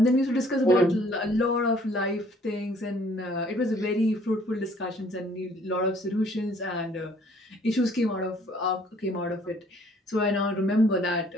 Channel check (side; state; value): both; normal; correlation 0.59